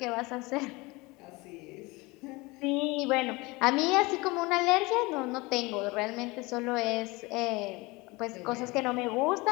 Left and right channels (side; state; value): right; quieter; 23.8 dB